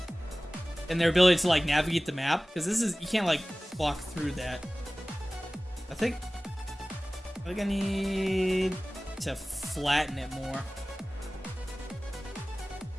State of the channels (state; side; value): normal; both; correlation 0.98